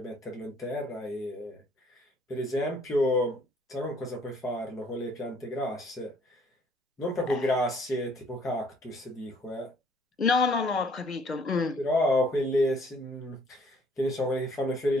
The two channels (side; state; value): both; normal; correlation 0.61